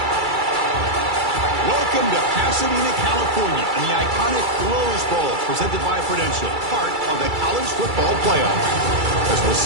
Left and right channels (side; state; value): left; late; 2.3 ms